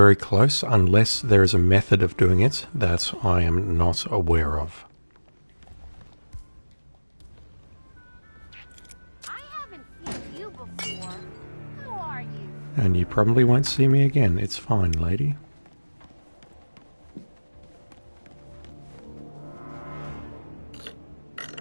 close unless there is a method of doing it that I am not aware of. I haven't seen you before. Who are you? And you probably won't see me again. It's fine, lady.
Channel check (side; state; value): both; inverted; correlation -1.00